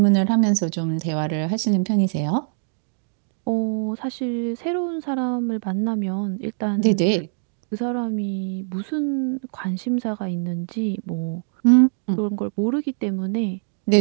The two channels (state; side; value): silent; left; digital silence